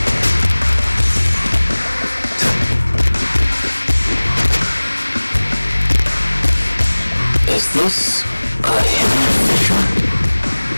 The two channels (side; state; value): both; inverted; correlation -1.00